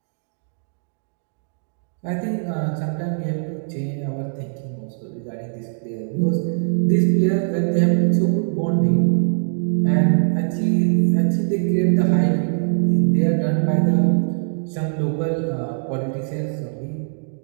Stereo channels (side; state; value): left; silent; digital silence